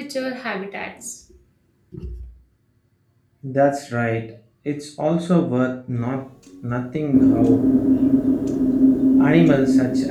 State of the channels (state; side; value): identical; both; correlation 1.00